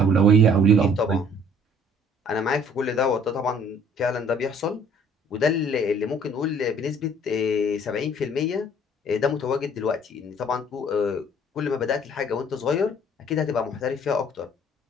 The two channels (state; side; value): normal; both; correlation 0.56